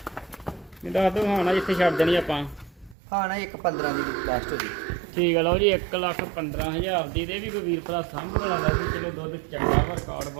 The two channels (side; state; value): left; drops out; at 3.0 s